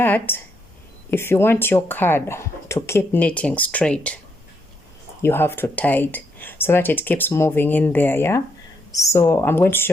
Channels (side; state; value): both; normal; correlation 0.77